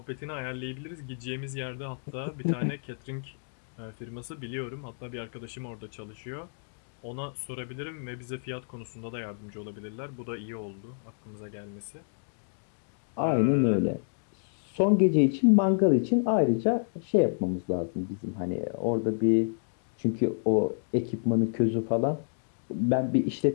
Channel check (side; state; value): right; silent; digital silence